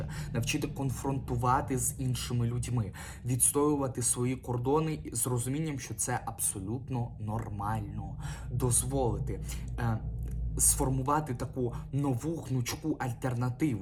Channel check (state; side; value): identical; both; correlation 1.00